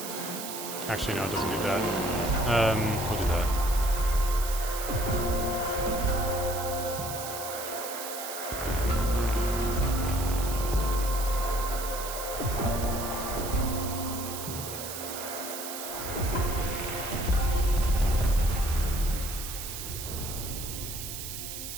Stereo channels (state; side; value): noise; right; hiss, 7 dB below the sound